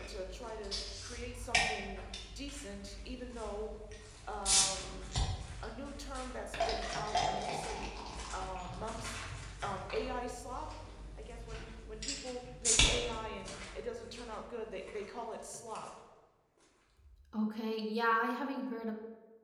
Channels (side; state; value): both; identical; correlation 1.00